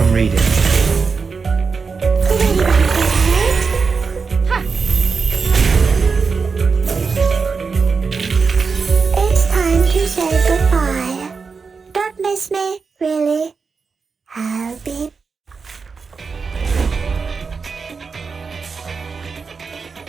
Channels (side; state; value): left; quieter; 5.0 dB